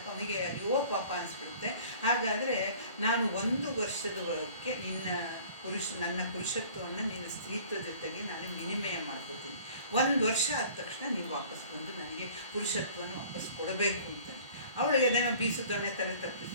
ಅವನಿಗೆ ಅಯ್ಯೋ ಪಾಪ ಅನಿಸ್ಬಿಡುತ್ತೆ. ಹಾಗಾದರೆ ನಾನು 1 ವರ್ಷದವರೆಗೆ ನನ್ನ ಪುರುಷತ್ವವನ್ನು ನಿನ್ನ ಸ್ತ್ರೀತ್ವ ಜೊತೆಗೆ ನಾನು ವಿನಿಮಯ ಮಾಡ್ಕೋತೀನಿ. 1 ವರ್ಷ ಆದ ತಕ್ಷಣ ನೀವು ವಾಪಸ್ ಬಂದು ನನಗೆ ಪುರುಷತ್ವನ ವಾಪಸ್ ಕೊಡಬೇಕು ಅಂತಾನೆ. ಅವಳಿಗೆ ಅದನ್ನು ಬೀಸು ದೊಣ್ಣೆ ತಲೆ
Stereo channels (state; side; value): inverted; both; correlation -0.49